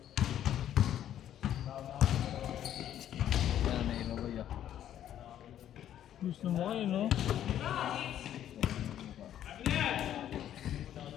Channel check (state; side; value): quieter; right; 11.0 dB